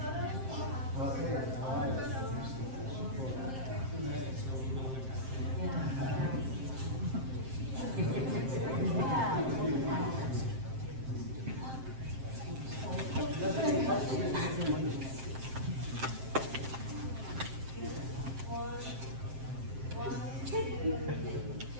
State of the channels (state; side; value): late; left; 7.6 ms